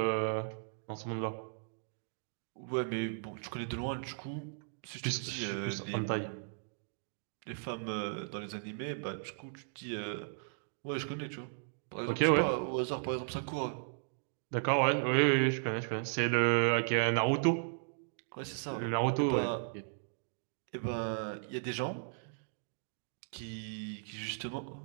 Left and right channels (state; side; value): silent; left; digital silence